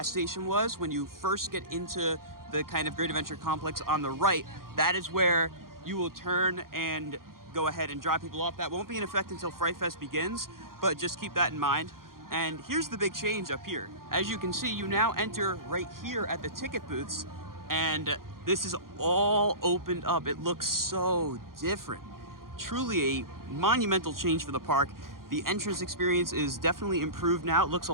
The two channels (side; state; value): left; late; 0.92 ms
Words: station was. When you first get into the kind of Great Adventure complex on the right, that is where you will turn and go ahead and drop people off. That won't be in effect until Fright Fest begins, but just keep that in mind. And here's the big change up here. As you can see, you now enter right here at the ticket booths, and this is all opened up. It looks so different. Truly a monumental change for the park. The entrance experience is definitely improved now. It looks a